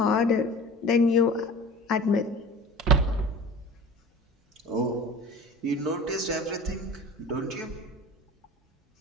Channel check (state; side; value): normal; both; correlation 0.39